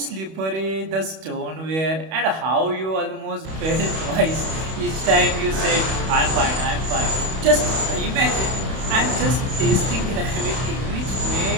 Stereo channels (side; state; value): left; late; 31 ms